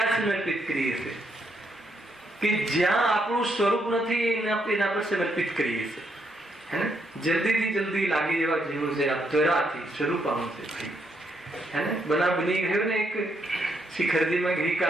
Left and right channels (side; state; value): both; normal; correlation 0.76